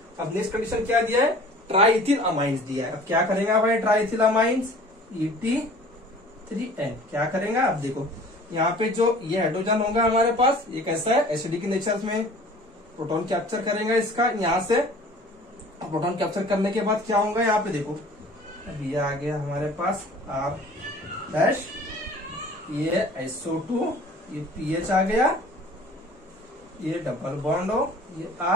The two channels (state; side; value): normal; both; correlation 0.47